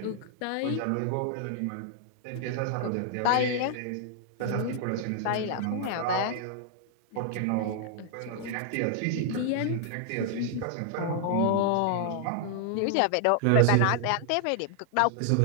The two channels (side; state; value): both; different; correlation 0.00